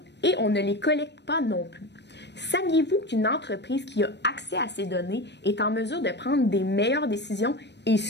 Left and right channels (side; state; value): right; late; 0.50 ms